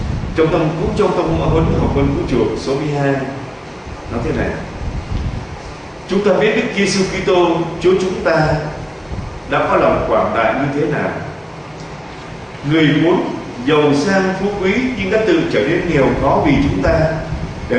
Trong tâm huấn học vấn vũ trụ số 12 nói thế này: chúng ta biết Đức Giêsu Kitô Chúa chúng ta đã có lòng quảng đại như thế nào. Người muốn giàu sang phú quý nhưng đã tự trở nên nghèo khó vì chúng ta, để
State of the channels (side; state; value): both; identical; correlation 1.00